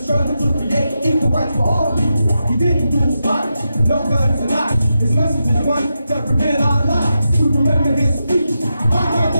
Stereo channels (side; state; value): both; inverted; correlation -0.88